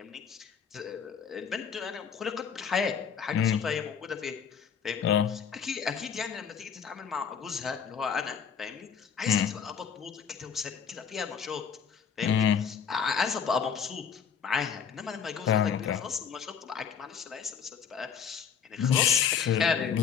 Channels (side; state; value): right; quieter; 7.1 dB